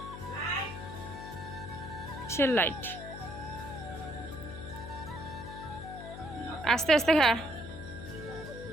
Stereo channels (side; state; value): left; noise; hum, 10 dB below the sound